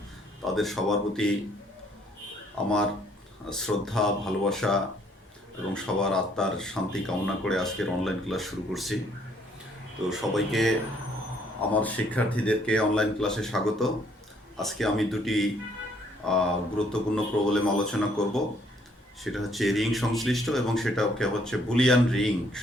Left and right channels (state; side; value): normal; both; correlation 0.65